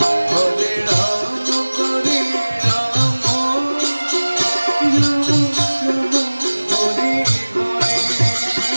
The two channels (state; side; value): inverted; both; correlation -1.00